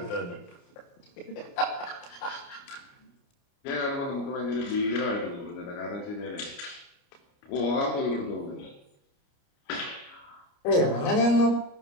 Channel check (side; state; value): right; late; 29 ms